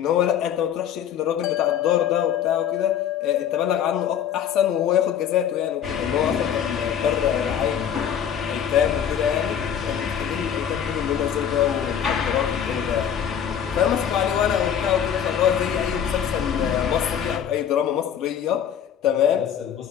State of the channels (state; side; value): quieter; right; 9.0 dB